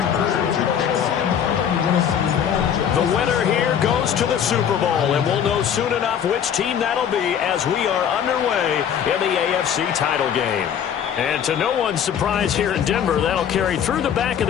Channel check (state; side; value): quieter; right; 8.6 dB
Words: The winner here goes to the Super Bowl, and we'll know soon enough which team that'll be as we are underway in the AFC title game. And to no one's surprise here in Denver, that'll carry through the back of